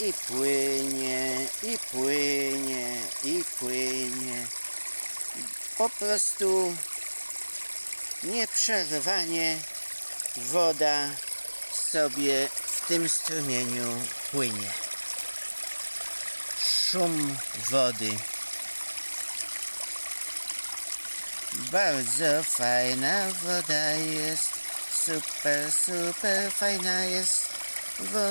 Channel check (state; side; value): inverted; both; correlation -1.00